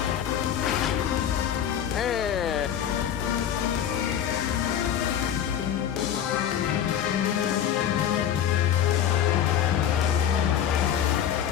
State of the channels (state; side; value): quieter; right; 9.6 dB